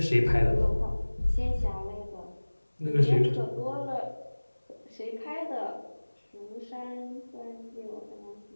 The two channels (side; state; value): both; inverted; correlation -1.00